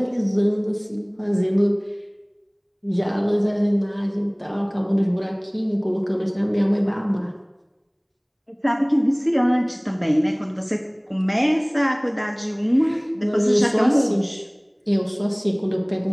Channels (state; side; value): identical; both; correlation 1.00